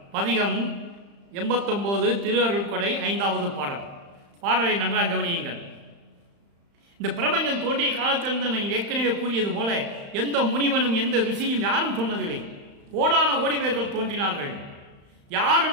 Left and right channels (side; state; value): left; late; 35 ms